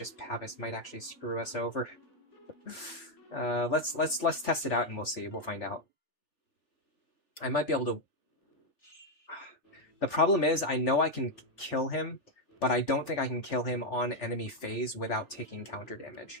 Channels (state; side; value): late; right; 3.4 ms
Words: Pavis might actually screw us over. Let's test it out and we'll see. We'll find out. I might be able to... The problem is, I know I can kill him, but I don't think I can kill him on enemy phase without taking counter